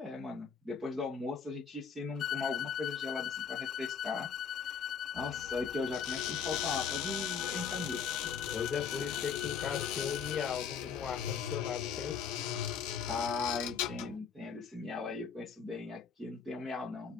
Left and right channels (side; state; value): right; quieter; 6.6 dB